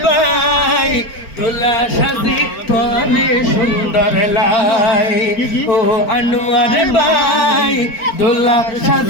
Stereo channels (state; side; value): late; right; 4.4 ms